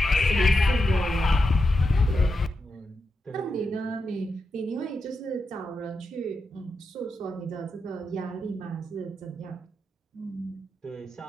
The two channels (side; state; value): both; normal; correlation 0.87